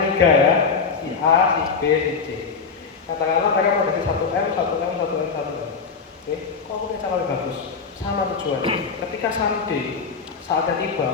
3 ya. Si A, si B, si C. Katakanlah mereka mau kasih 1M, 1M, 1M, 1M. Oke, kok aku punya cara lebih bagus? Sama tujuan. Ketika someday saatnya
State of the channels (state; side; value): quieter; right; 5.5 dB